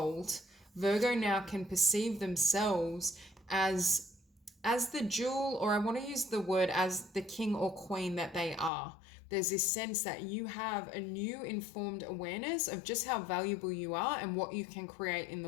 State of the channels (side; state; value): right; drops out; at 8.7 s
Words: Virgo now can perceive themselves as the jewel, or I want to use the word as the king or queen that they are. There's this sense that you have a new informed awareness of just how valuable you are and what you can create in the